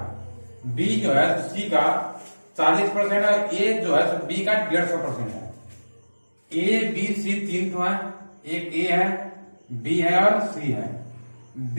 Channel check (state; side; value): inverted; both; correlation -1.00